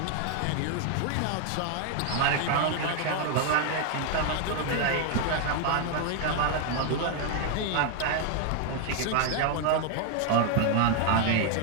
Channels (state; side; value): different; both; correlation 0.00